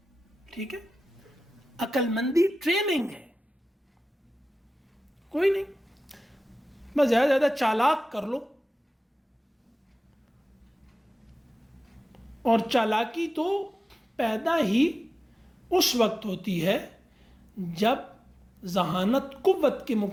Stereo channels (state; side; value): normal; both; correlation 0.95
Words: ٹھیک ہے، عقل مندی ٹریننگ ہے. کوئی نہیں، بس زیادہ سے زیادہ چالاک کر لو. اور چالاکی تو پیدا ہی اس وقت ہوتی ہے جب ذہانت قوت کے